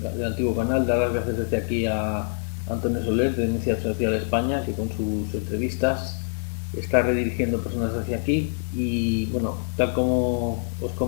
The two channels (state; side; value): silent; right; 62 dB below the other